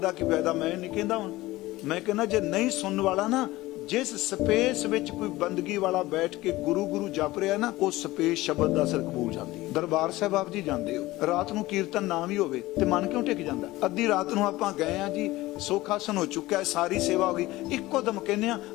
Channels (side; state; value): right; quieter; 18.4 dB